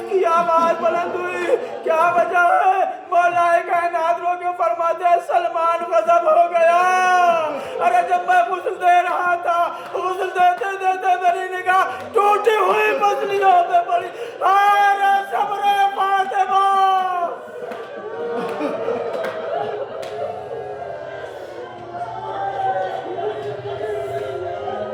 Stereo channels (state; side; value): identical; both; correlation 1.00